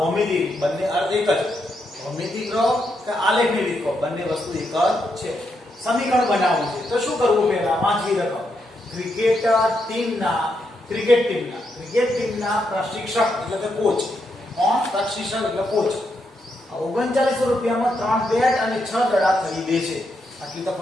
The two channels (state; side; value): normal; both; correlation 0.81